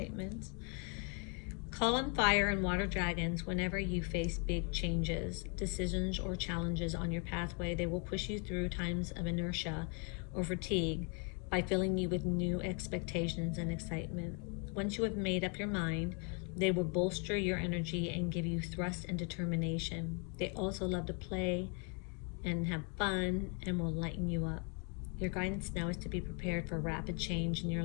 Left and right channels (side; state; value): right; quieter; 36.5 dB